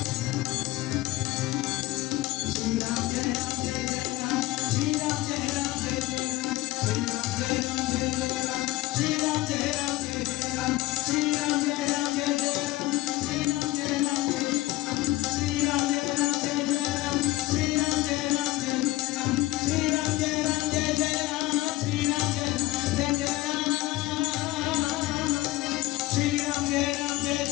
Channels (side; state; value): right; quieter; 17.9 dB